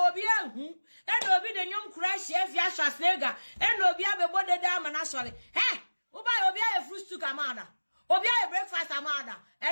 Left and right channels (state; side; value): inverted; both; correlation -1.00